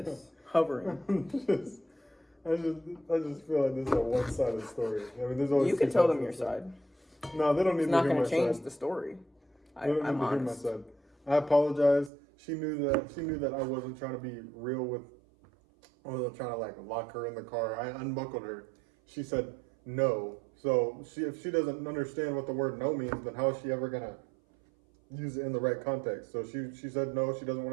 Hovering. I just feel like this is a one-sided story. I mean, there's always You can tell them your side. No, they don't need It's to not hear going my to change side. the story. They don't I'm need to hear my honest. side. I apologize. She knew that I wasn't trying to be real with, I wasn't trying to like lock her in the car. I unbuckled her. She said no. So if she doesn't understand what the word no means, then how is she ever gonna use it in the right context? So she said no, she doesn't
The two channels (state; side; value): drops out; left; at 12.1 s